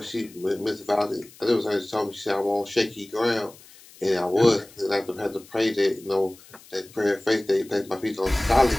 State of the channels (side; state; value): left; noise; hiss, 23 dB below the sound